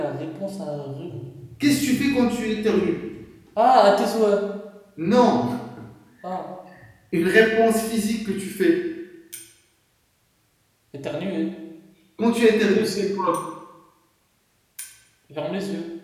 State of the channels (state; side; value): identical; both; correlation 1.00